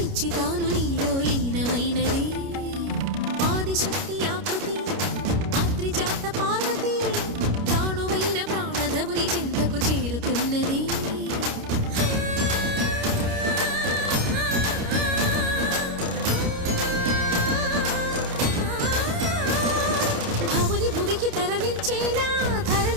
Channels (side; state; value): left; late; 29 ms